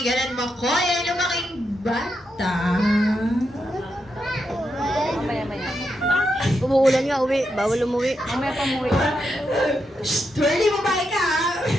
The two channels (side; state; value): both; normal; correlation 0.84